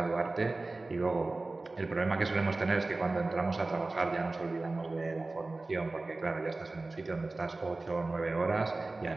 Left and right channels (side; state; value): left; quieter; 3.2 dB